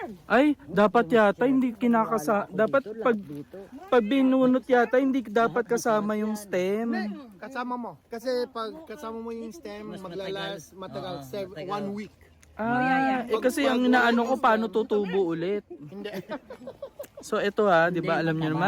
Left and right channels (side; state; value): both; identical; correlation 1.00